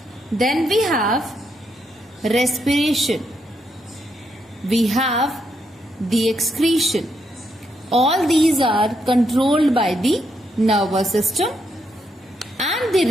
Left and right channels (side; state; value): both; normal; correlation 0.78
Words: Then we have respiration. We have the excretion. All these are controlled by the nervous system, and the